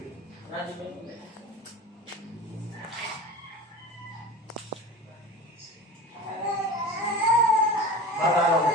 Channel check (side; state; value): both; normal; correlation 0.33